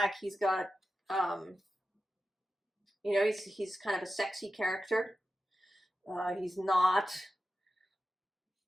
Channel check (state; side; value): normal; both; correlation 0.92